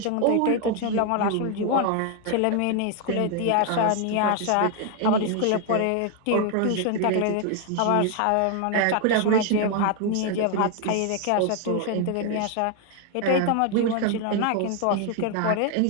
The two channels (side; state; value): both; different; correlation 0.00